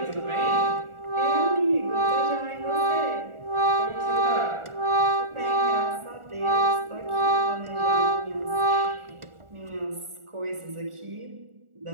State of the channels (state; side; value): late; left; 1.4 ms